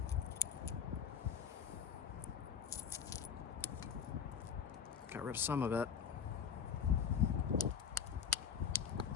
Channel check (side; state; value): right; quieter; 7.4 dB